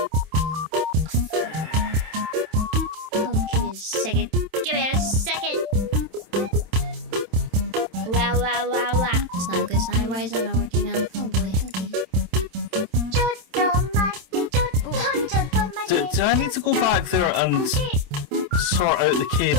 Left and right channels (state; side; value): late; left; 27 ms